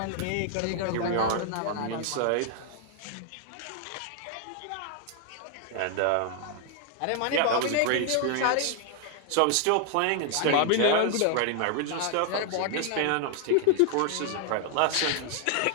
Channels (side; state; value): both; different; correlation 0.00